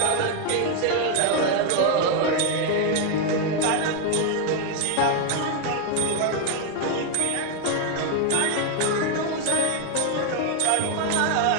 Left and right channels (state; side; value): different; both; correlation 0.01